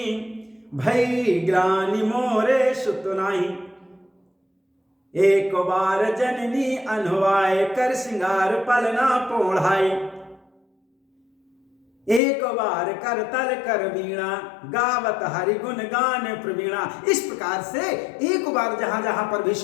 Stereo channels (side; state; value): right; drops out; at 12.2 s